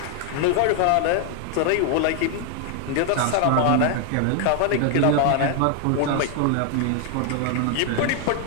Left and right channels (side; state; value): both; different; correlation 0.00